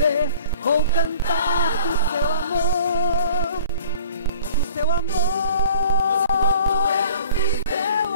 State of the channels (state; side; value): inverted; both; correlation -0.54